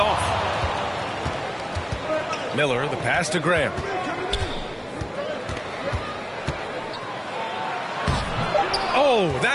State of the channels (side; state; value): both; identical; correlation 1.00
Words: Miller, the pass to Grant. Oh,